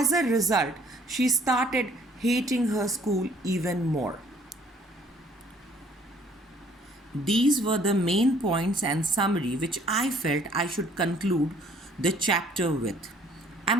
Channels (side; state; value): both; normal; correlation 0.59